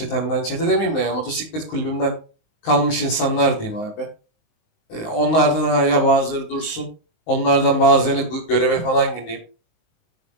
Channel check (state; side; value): late; right; 19 ms